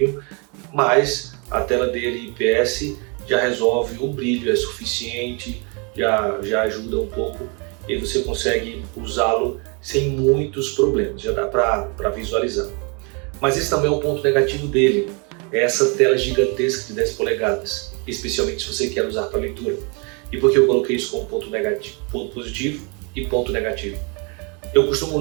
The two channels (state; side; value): quieter; left; 33.3 dB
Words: mas a tela dele IPS já resolve, o brilho é suficiente, já ajuda um pouco e você consegue usá-lo sem muitos problemas, já dá para visualizar. Mas esse também é um ponto negativo dele, é essa tela gigantesca de 10 polegadas, especialmente se você quer usar para leitura. E por que eu coloquei isso como ponto negativo, ponto positivo e ponto negativo? Eu costumo